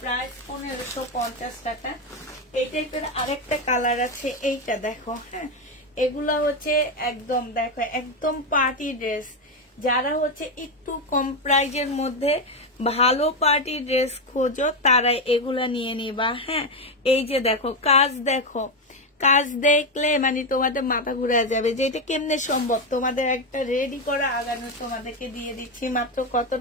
প্রাইস 1550 টাকা। এই টাইপের আরেকটা কালার আছে, এইটা দেখো। হ্যাঁ, এগুলা হচ্ছে একদম দেখো একদম পার্টি ড্রেস। যারা হচ্ছে একটু কম প্রাইজের মধ্যে ভালো পার্টি ড্রেস খোঁজো তারা এগুলা নিয়ে নিবা। হ্যাঁ, এই যে দেখো কাজ, দেখো কাজ দেখলে মানে তোমাদের মাথা ঘুরে যাবে যে এটা কেমনে সম্ভব। তোমাদের একটা রেডি করা আগানো তোমাদেরকে দিয়ে দিচ্ছি মাত্র কত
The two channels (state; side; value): normal; both; correlation 0.09